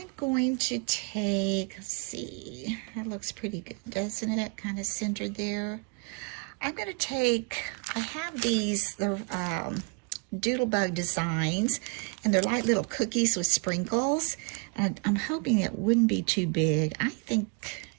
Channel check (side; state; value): left; quieter; 33.3 dB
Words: going to take, let's see, that looks pretty good, doesn't it? Kind of centered there. I'm going to take, I have these, the Doodlebug designs, and they're like little cookies with sprinkles. And I'm hoping it wouldn't be too big. I think